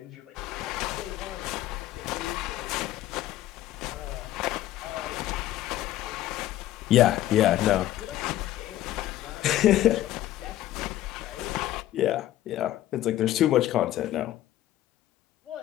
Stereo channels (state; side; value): quieter; right; 13.9 dB